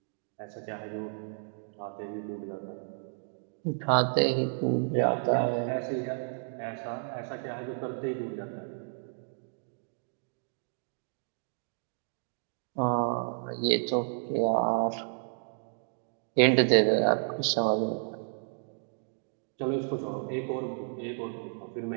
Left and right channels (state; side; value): silent; left; digital silence